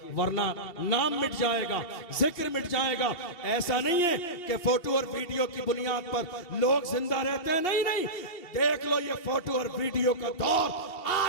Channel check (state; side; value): late; right; 2.8 ms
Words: वरना नाम मिट जाएगा, जिक्र मिट जाएगा। ऐसा नहीं है कि फोटो और वीडियो की बुनियाद पर लोग जिंदा रहते हैं, नहीं नहीं, देख लो ये फोटो और वीडियो का दौर